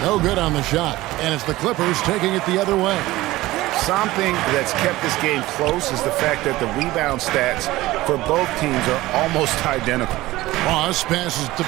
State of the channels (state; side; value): quieter; left; 18.0 dB